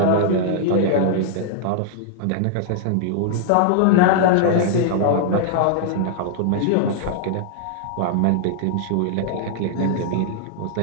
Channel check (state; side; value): different; both; correlation -0.01